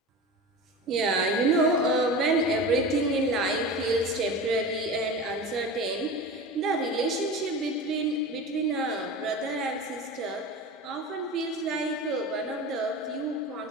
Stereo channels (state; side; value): normal; both; correlation 0.31